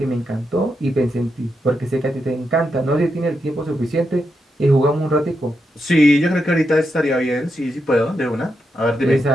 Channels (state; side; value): normal; both; correlation 0.84